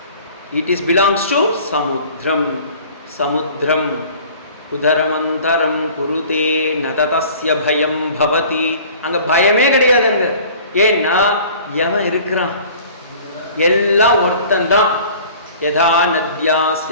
It is belongs to சமுத்திரம். சமுத்திரம் உதரமந்தரம் குருதே நததஸ்ய பயம் பவதி. அங்க பயமே கிடையாது. அங்க ஏன்னா எவன் இருக்கிறான்? எல்லாம் ஒருத்தந்தான். யதா நத்யா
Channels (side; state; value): both; inverted; correlation -0.47